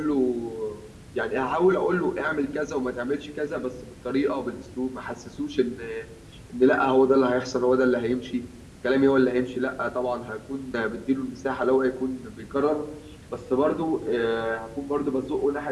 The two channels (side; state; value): both; identical; correlation 1.00